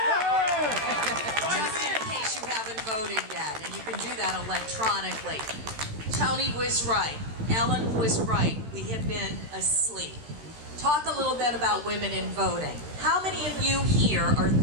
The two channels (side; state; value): left; late; 13 ms